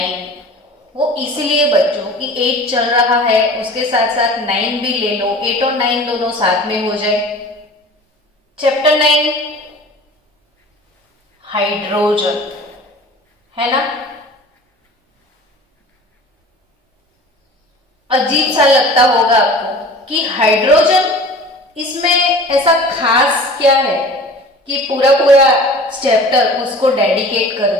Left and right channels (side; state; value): both; normal; correlation 0.42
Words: वो इसीलिए बच्चों कि 8 चल रहा है उसके साथ साथ 9 भी ले लो, 8 और 9 दोनों साथ में हो जाए। चैप्टर 9 हाइड्रोजन है ना। अजीब सा लगता होगा आपको कि हाइड्रोजन, इसमें ऐसा खास क्या है कि पूरा चैप्टर उसको डेडिकेट कर